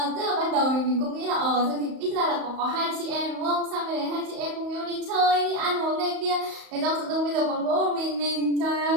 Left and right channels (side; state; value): left; late; 35 ms